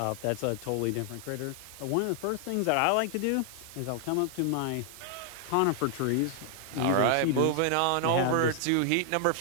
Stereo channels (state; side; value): different; both; correlation 0.00